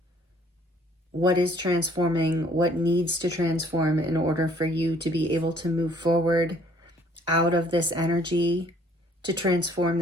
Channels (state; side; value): normal; both; correlation 0.59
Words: what is transforming, what needs to transform in order for you to be able to move forward out of this energy, to transform